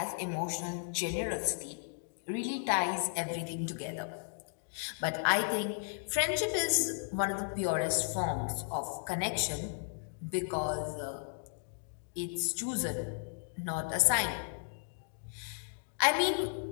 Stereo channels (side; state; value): right; silent; digital silence